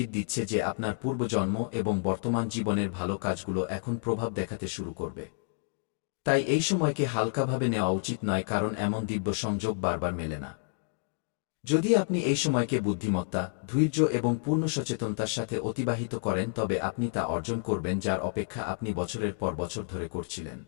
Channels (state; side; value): silent; right; digital silence